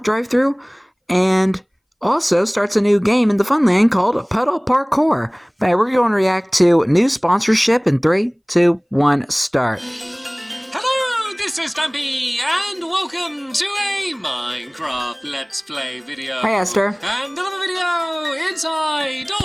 drive-thru, and also starts a new game in the Funland called Pedal Parkour. But we're going to react to new sponsorship in 3, 2, 1, start. Hello, this is Stampy, and welcome to a Minecraft Let's Play video. Hi, Esther. And another video inside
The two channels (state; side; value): identical; both; correlation 1.00